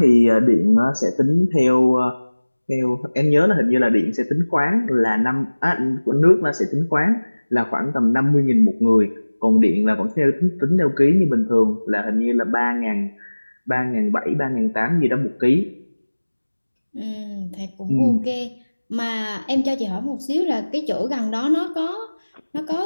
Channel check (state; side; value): inverted; both; correlation -1.00